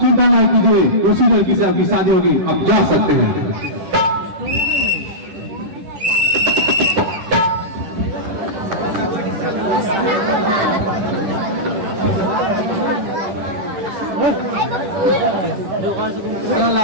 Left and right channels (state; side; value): late; left; 10 ms